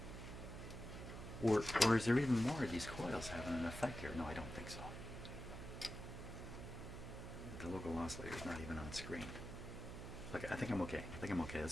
Or is there even more of these coils having an effect here? No, I don't think so. The local oscillator is not even on screen. Look, I think I'm okay.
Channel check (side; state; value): right; noise; hum, 8 dB below the sound